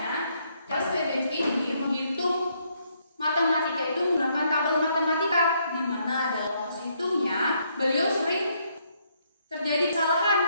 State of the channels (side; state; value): both; inverted; correlation -0.72